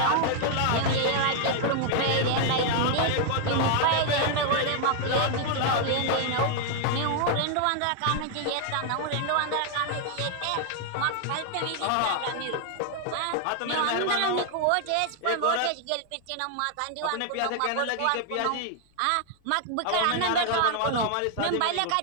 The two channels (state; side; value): different; both; correlation 0.00